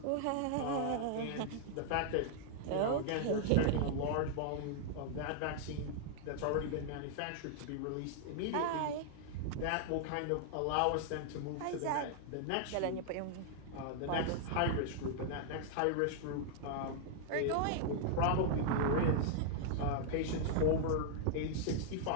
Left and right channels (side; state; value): both; different; correlation -0.01